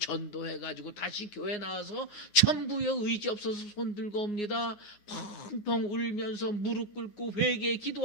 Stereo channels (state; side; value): late; right; 9.5 ms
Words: 다시 교회 나와서 천부여 의지 없어서 손 들고 옵니다. 펑펑 울면서 무릎 꿇고 회개에